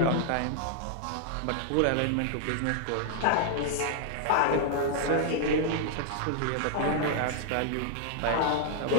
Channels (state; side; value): different; both; correlation 0.00